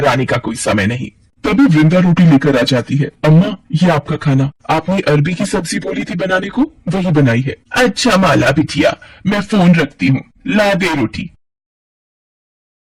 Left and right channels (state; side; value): identical; both; correlation 1.00